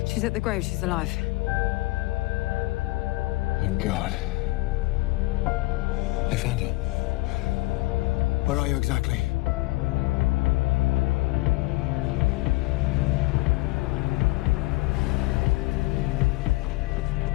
She's at the grave. She's alive. thank God. They found her. Where are you exactly?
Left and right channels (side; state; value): right; quieter; 20.9 dB